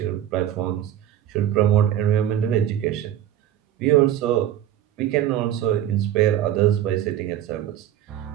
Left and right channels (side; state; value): left; quieter; 11.4 dB